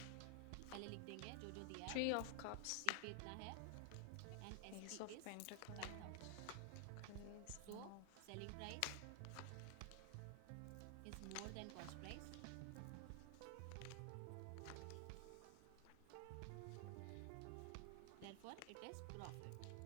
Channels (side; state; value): both; different; correlation 0.00